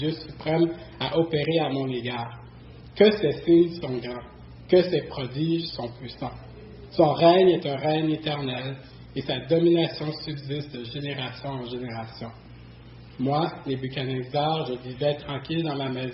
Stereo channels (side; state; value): both; identical; correlation 1.00